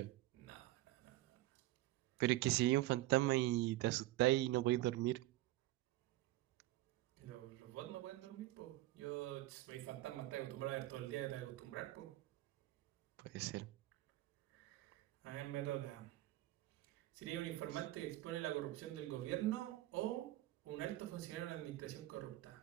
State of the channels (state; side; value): quieter; left; 16.6 dB